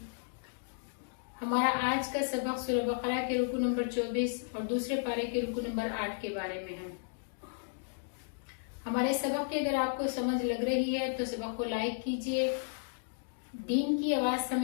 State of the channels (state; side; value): silent; right; digital silence